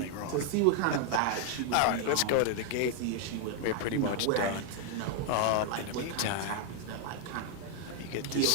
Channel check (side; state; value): both; different; correlation 0.00